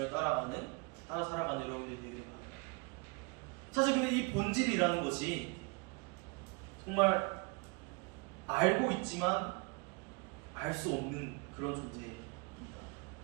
따라 살아가는 여러분들이 되기를 바랍니다. 사실 근데 이 본질이라는 것이 정말 알고 있지만 알 수 없는 그런 존재입니다.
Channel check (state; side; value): quieter; left; 30.0 dB